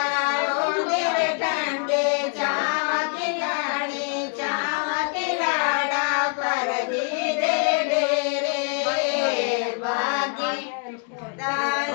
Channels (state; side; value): quieter; right; 39.2 dB